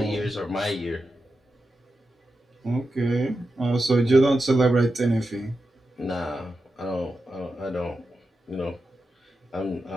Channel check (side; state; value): both; normal; correlation 0.89